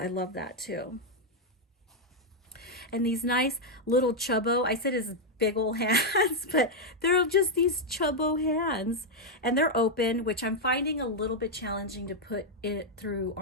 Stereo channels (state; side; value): normal; both; correlation 0.00